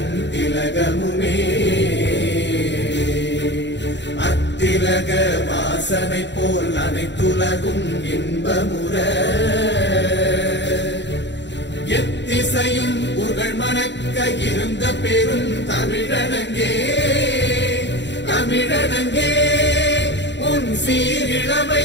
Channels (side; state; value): right; late; 0.52 ms